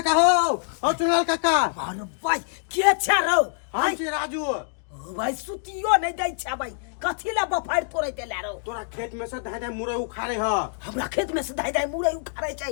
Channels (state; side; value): silent; right; digital silence